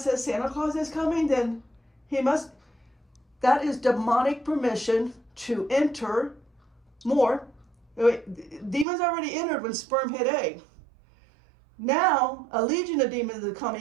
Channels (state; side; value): drops out; left; at 8.8 s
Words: Santa Claus is coming, then he must. That is demonic permission to enter more. Demons already entered when sperm hit egg. Now, a legion of demons are